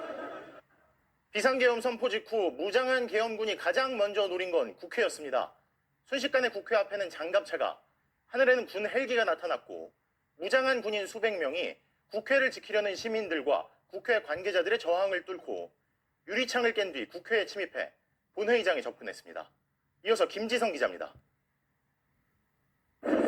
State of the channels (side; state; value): both; identical; correlation 1.00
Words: 비상계엄 선포 직후 무장한 계엄군이 가장 먼저 노린 건 국회였습니다. 순식간에 국회 앞에는 장갑차가, 하늘에는 군 헬기가 나타났고 무장한 군인 수백 명이 국회를 지키려는 시민들과 국회 관계자들의 저항을 뚫고 유리창을 깬 뒤 국회에 침입해 본회의장에 접근했습니다. 이어서 김지성 기자입니다.